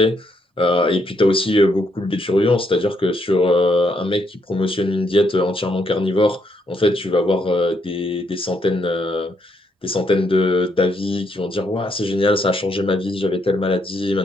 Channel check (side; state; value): both; normal; correlation 0.75